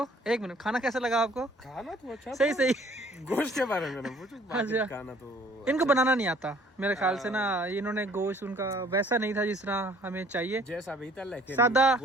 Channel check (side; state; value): both; normal; correlation 0.57